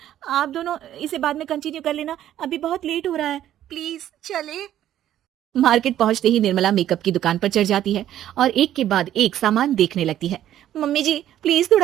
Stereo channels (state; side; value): quieter; left; 11.9 dB